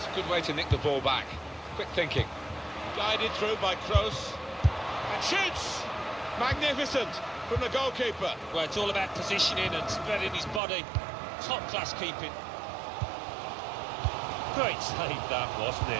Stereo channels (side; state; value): left; drops out; at 10.6 s